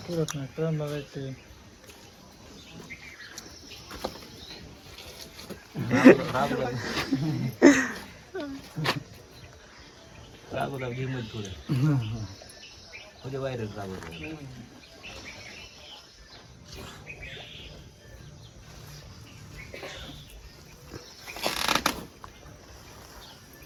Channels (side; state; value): both; identical; correlation 1.00